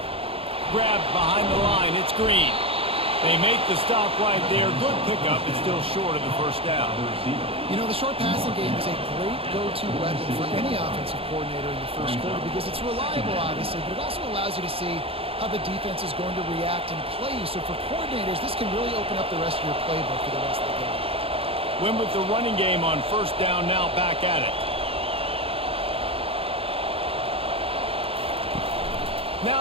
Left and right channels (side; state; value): left; late; 0.27 ms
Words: Grabbed behind the line, it's Green. They make the stop right there. Good pickup, it's still short of the first down. You know, the short passing game is a great go-to weapon for any offensive coordinator in the first quarter because it's reliable, obviously, but it also allows you to see how the defense is going to react and play. So for coordinators, this can really open up the rest of your playbook for the rest of the game. Win with the running game on first down, now back at it.